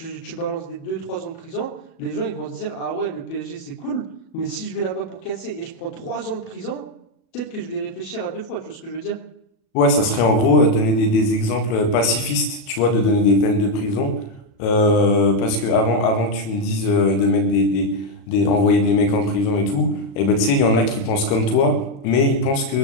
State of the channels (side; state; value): right; late; 37 ms